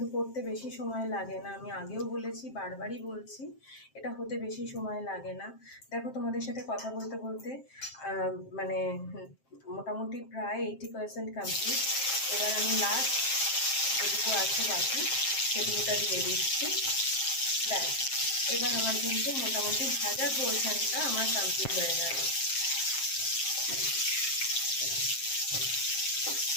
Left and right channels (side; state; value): right; late; 7.6 ms